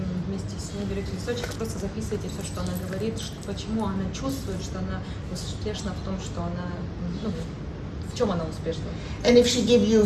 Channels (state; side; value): identical; both; correlation 1.00